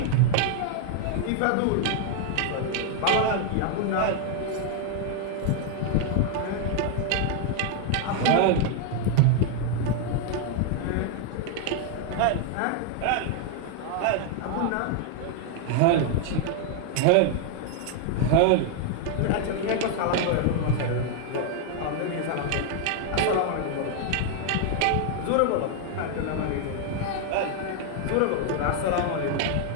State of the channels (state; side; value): different; both; correlation 0.00